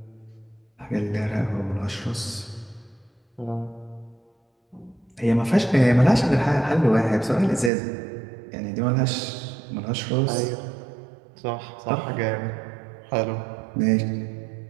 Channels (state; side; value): drops out; left; at 7.7 s